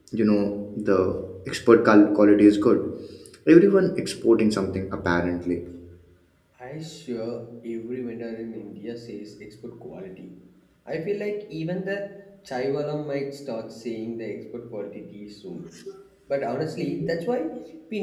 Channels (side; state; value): both; identical; correlation 1.00